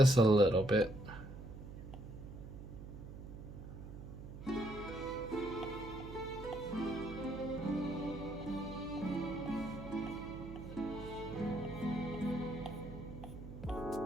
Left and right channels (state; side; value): noise; right; hum, 12 dB below the sound